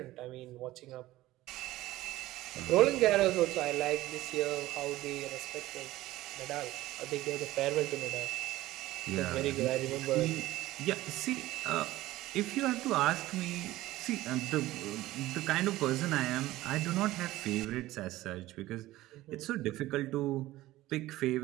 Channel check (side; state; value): left; quieter; 16.7 dB